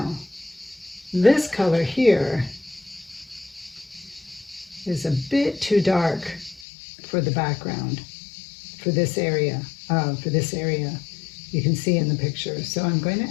this color here is a bit too dark for the background, for this area. You can see in the picture. So I'm going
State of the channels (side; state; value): right; drops out; at 6.7 s